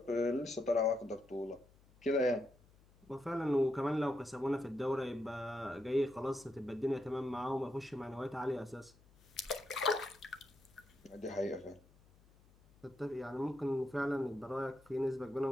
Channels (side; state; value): left; noise; hum, 27 dB below the sound